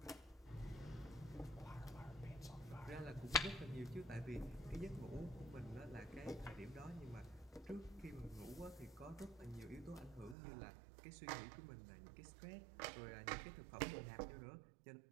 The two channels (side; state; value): left; drops out; at 10.4 s